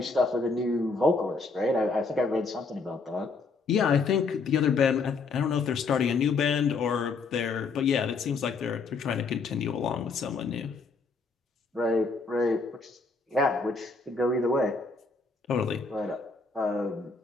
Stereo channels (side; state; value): right; quieter; 4.3 dB